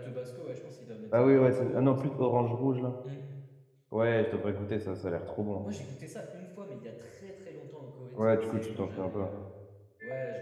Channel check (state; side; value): identical; both; correlation 1.00